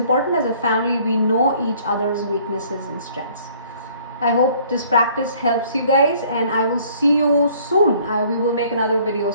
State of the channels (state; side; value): inverted; both; correlation -0.58